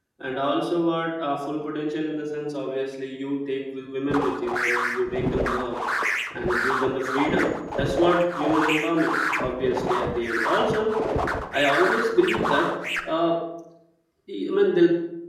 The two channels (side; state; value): both; identical; correlation 1.00